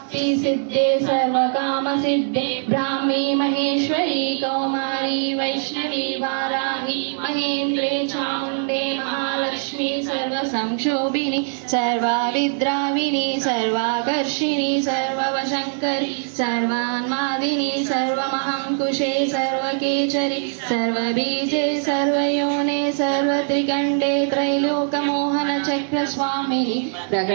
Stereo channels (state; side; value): silent; left; 64 dB below the other